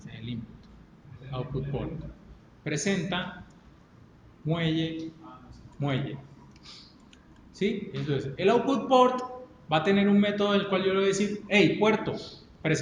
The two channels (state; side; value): identical; both; correlation 1.00